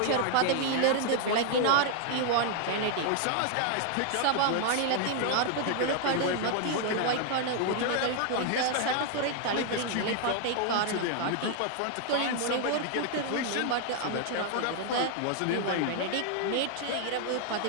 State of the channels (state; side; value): different; both; correlation 0.00